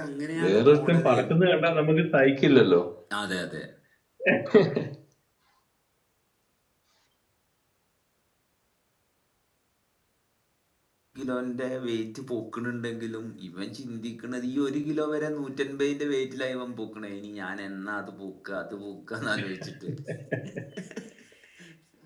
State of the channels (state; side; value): identical; both; correlation 1.00